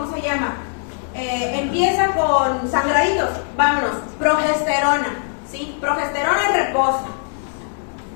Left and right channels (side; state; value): right; silent; digital silence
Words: se llama? Empieza con sangraditos, vámonos. Progesterona, ¿sí? Progesterona en reposo.